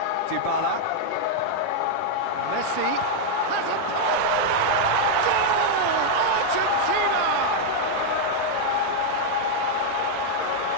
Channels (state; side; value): different; both; correlation -0.01